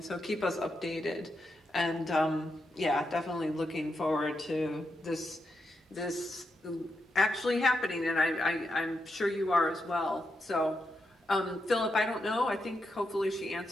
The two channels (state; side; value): normal; both; correlation 0.84